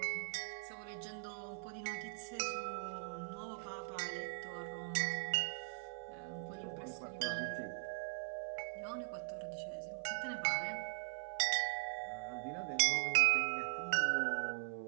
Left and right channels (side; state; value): left; silent; 50 dB below the other